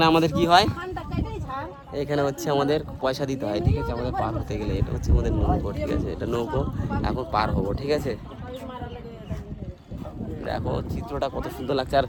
আমাদের কি হয়, এখানে হচ্ছে আমাদের পয়সা দিতে হয়, ঠিক আছে, আমাদের পার হতে গেলে। এটা হচ্ছে আমাদের নৌকো, ঠিক আছে, এটা নৌকো, এখন পার হবো, ঠিক আছে। দেখো চিত্রটা কত সুন্দর লাগছে, আর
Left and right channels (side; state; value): both; identical; correlation 1.00